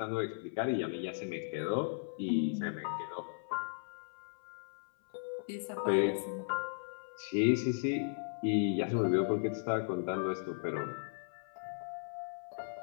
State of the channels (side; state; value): right; silent; 53 dB below the other